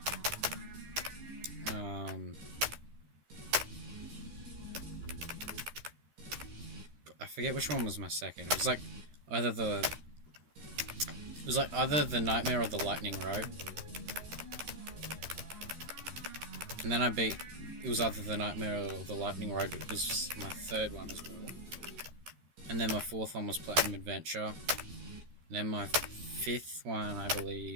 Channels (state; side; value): late; left; 13 ms